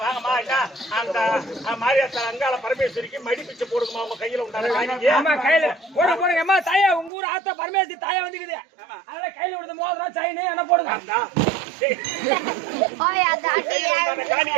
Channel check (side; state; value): left; drops out; at 7.1 s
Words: அந்த மாரியாத்தா அங்காள பரமேஸ்வரிக்கு மடி பிச்சை போடுங்கம்மா. உங்க கையில உண்டான ஆமா கையில போட போடுங்க. அம்மா தாயா, உங்க ஊர் ஆத்தா பரமேஸ்வரி தாயா வந்துக்குது. அதனால கையில விடுறது மோதிரம் செயின் என்ன போடுங்க.